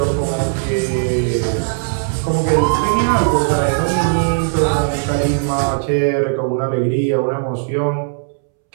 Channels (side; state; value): left; silent; 68 dB below the other